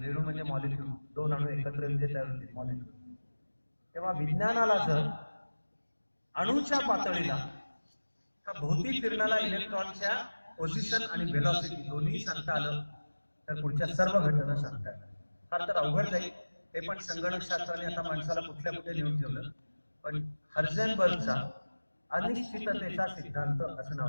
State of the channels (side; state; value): both; inverted; correlation -1.00